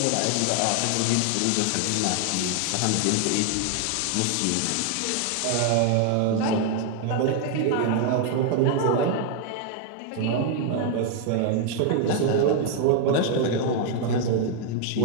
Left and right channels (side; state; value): both; different; correlation 0.00